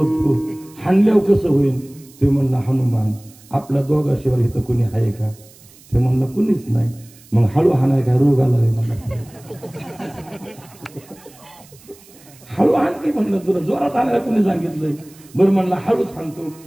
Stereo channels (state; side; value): noise; right; hiss, 25 dB below the sound